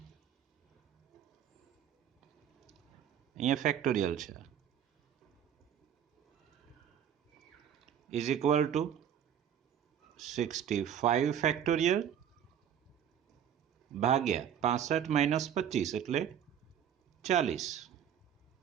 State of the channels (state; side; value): quieter; left; 9.2 dB